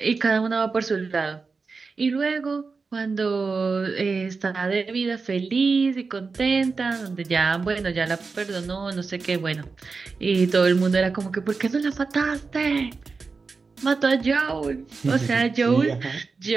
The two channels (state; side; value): quieter; left; 4.5 dB